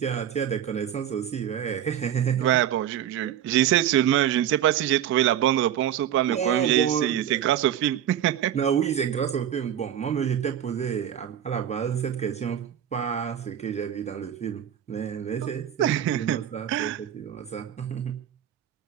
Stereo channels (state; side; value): quieter; left; 10.3 dB